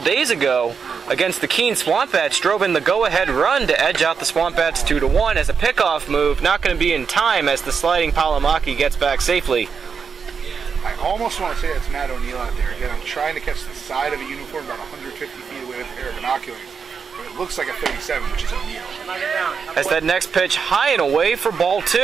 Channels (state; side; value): quieter; left; 6.0 dB